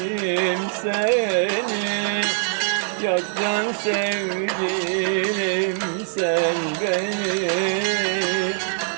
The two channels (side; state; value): left; silent; digital silence